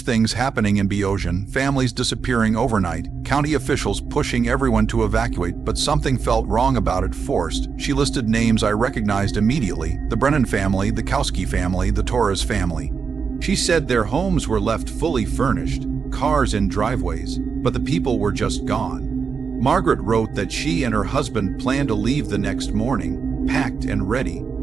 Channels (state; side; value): quieter; left; 5.8 dB